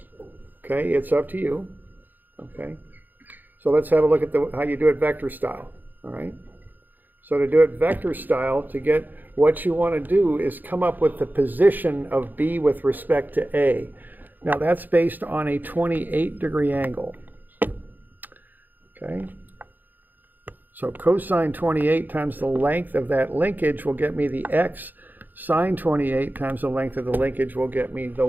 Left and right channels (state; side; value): late; left; 0.086 ms